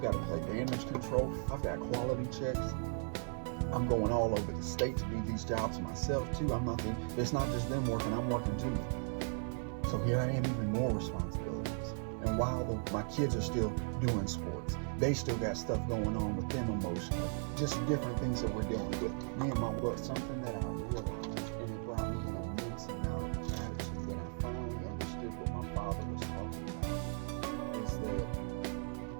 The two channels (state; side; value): silent; left; 53 dB below the other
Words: got to play damage control. I've got quality checks. I'm going all over the state to do these jobs myself too. It's not just them working, I'm working too. So here I am, even more responsibilities. And while my kids are still doing sports, they still got stuff going on with them emotionally. Just different things that we're dealing with. Me and my work, something that I realized, and it brought me an immense amount of gratitude when I finally understood what my father was talking about, is that